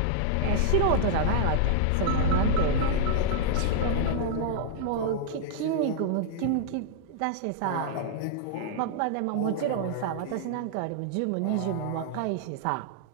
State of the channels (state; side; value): different; both; correlation -0.01